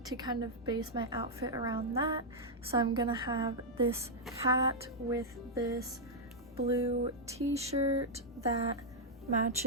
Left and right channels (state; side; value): normal; both; correlation -0.05